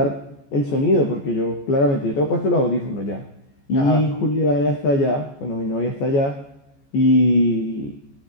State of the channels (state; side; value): late; right; 14 ms